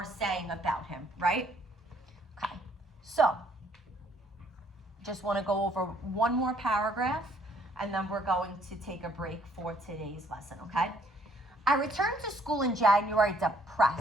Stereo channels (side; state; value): both; normal; correlation 0.65